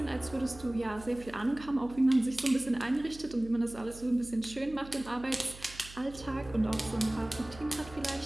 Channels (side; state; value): right; noise; hum, 17 dB below the sound